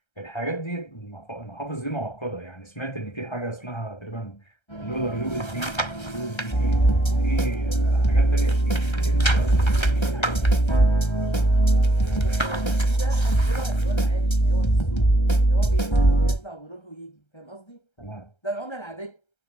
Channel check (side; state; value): right; late; 1.3 ms